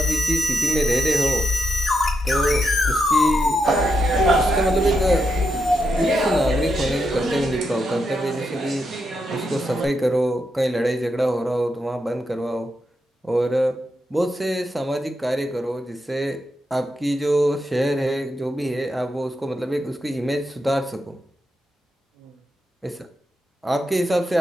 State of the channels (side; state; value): both; normal; correlation 0.84